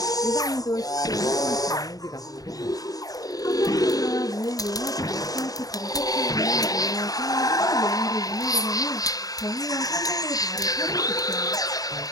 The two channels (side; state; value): right; late; 0.18 ms